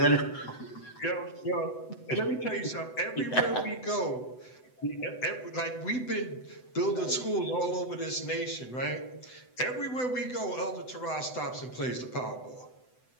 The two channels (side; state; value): right; late; 7.9 ms